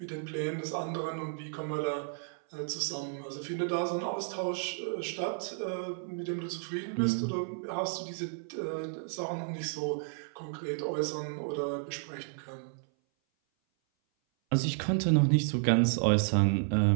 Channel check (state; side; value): silent; left; 56 dB below the other